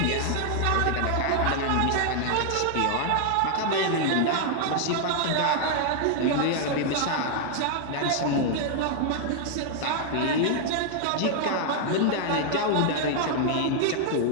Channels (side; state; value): both; different; correlation 0.00